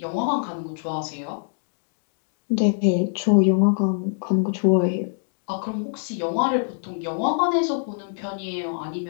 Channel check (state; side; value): silent; right; digital silence